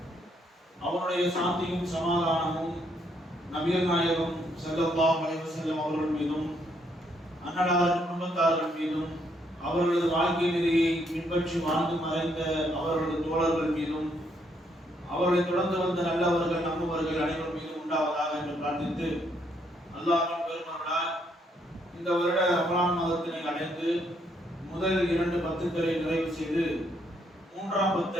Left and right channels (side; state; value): both; normal; correlation 0.72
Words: அவருடைய சாந்தியும் சமாதானமும் நபிகள் நாயகம் ஸல்லல்லாஹு அலைஹி வஸல்லம் அவர்கள் மீதும் அன்னலார் குடும்பத்தார்கள் மீதும் அவர்களது வாழ்க்கை நெறியை பின்பற்றி வாழ்ந்து மறைந்த அவர்களது தோழர்கள் மீதும் அவர்களை தொடர்ந்து வந்த நல்லவர்கள் நம்புவர்கள் அனைவரும் மீதும் உண்டாவதாக என்று பிரார்த்தித்து, அல்லாஹ்வின் பெருமருளால் இந்த வருட ரமலான் மாதத்தினை அடைந்து முதல் 2 பத்துக்களை நிறைவு செய்து 3ஆம்